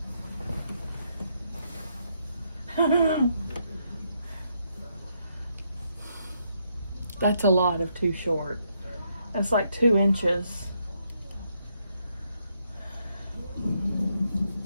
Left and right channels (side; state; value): both; inverted; correlation -0.76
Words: That's a lot of too short. That's like 2 inches.